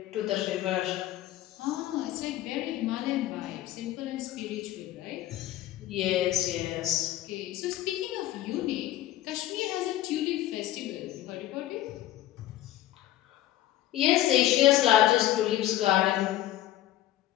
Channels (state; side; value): quieter; right; 13.9 dB